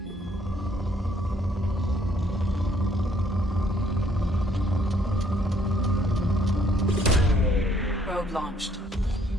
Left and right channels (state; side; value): normal; both; correlation 0.65